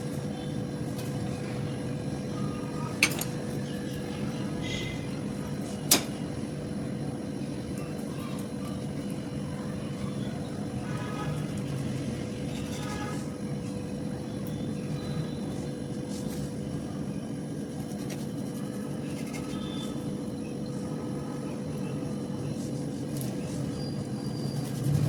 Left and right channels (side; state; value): both; identical; correlation 1.00